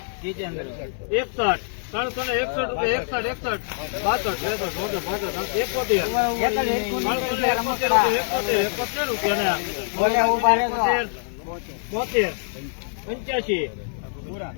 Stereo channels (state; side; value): silent; right; digital silence